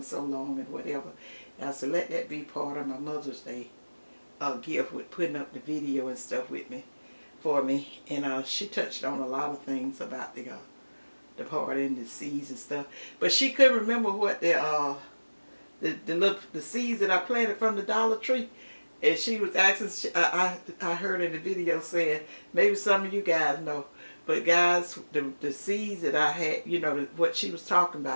so long and whatever. And I said, let that be part of my Mother's Day gift, with putting up the video and stuff with me, for me. And she touched on a lot of things about the party and the seeds and stuff. But she couldn't remember what the seeds that I planted from the Dollar Tree. And she was asking, I heard in the video saying, maybe some of you guys know. But guys, the seeds that I had, you know, what she was talking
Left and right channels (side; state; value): both; inverted; correlation -1.00